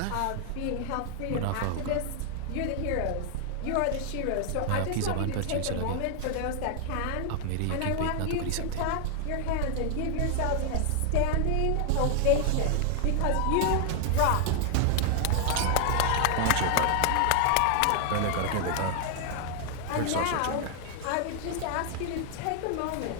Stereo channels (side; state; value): both; different; correlation 0.00